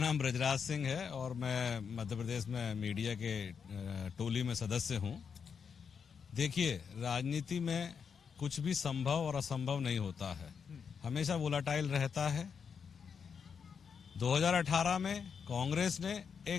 ब्रजराज सिंह है और मैं मध्य प्रदेश में मीडिया के टोली में सदस्य हूं। देखिए, राजनीति में कुछ भी संभव और असंभव नहीं होता है, हमेशा वोलाटाइल रहता है। 2018 में कांग्रेस ने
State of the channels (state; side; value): quieter; right; 6.5 dB